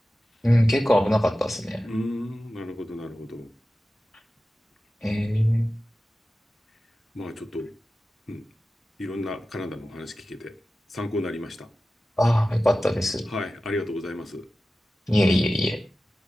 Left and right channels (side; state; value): both; normal; correlation 0.94